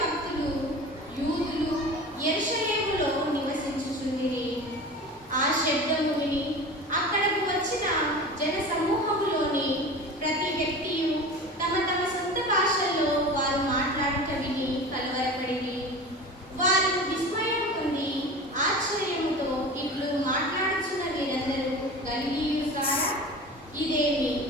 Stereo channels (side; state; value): both; normal; correlation 0.34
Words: భక్తులు యూదులు యెరూషలేములో నివసించుచుండిరి. ఆ శబ్దము విని అక్కడకు వచ్చిన జన సమూహములోని ప్రతి వ్యక్తియు తమ తమ సొంత భాషల్లో వారు మాట్లాడుట విని కలవరపడిరి. వారు విస్మయం పొంది ఆశ్చర్యముతో ఇట్లు మాట్లాడుచున్న వీరందరూ గలిలీయులు కారా? ఇదేమి?